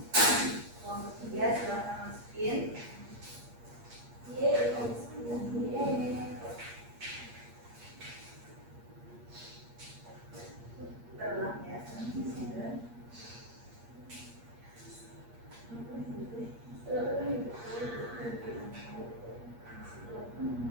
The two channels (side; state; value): left; late; 8.5 ms